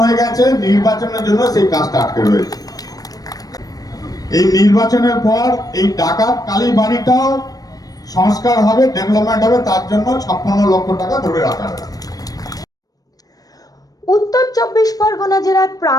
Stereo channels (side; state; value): right; late; 0.18 ms